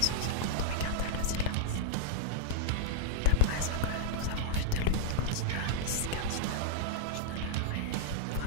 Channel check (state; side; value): different; both; correlation -0.02